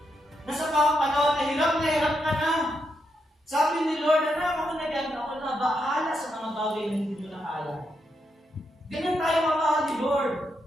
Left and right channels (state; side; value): normal; both; correlation 0.82